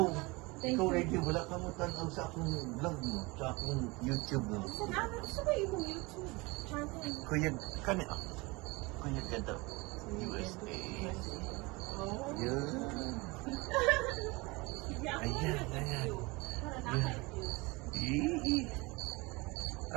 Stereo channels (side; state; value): left; quieter; 24.6 dB